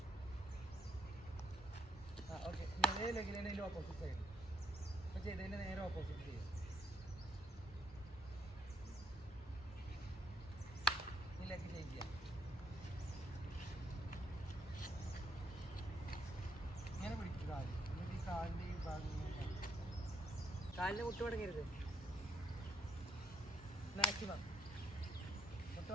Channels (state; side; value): normal; both; correlation 0.74